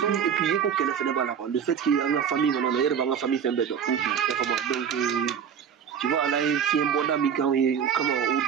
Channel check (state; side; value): quieter; left; 7.7 dB